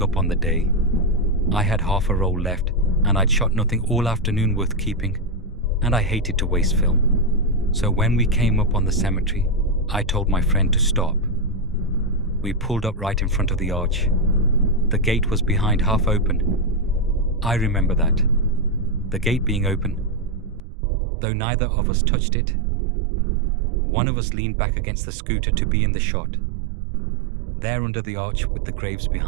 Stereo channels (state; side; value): drops out; left; at 20.6 s